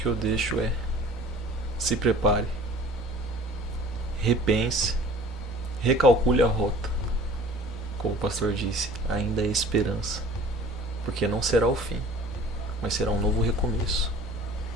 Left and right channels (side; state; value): both; normal; correlation 0.47